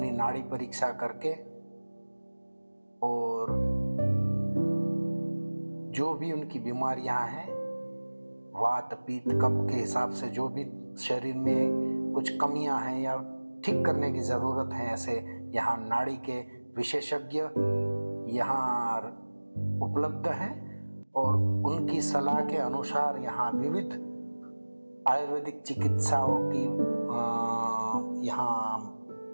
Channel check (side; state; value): both; inverted; correlation -1.00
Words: नाड़ी परीक्षा करके और जो भी उनकी बीमारियां हैं, वात पित्त कफ के हिसाब से जो भी शरीर में कुछ कमियां हैं या ठीक करने की ज़रूरत है, ऐसे यहाँ नाड़ी के विशेषज्ञ यहाँ उपलब्ध हैं और उनकी सलाह के अनुसार यहाँ विविध आयुर्वेदिक चिकित्साओं की यहाँ